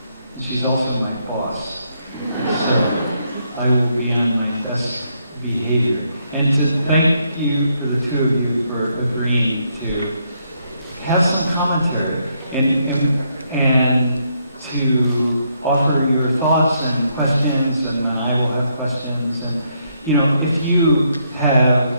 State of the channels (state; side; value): inverted; both; correlation -0.75